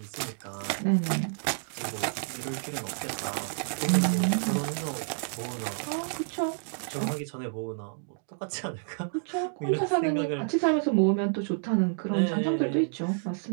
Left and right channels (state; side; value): silent; left; 58 dB below the other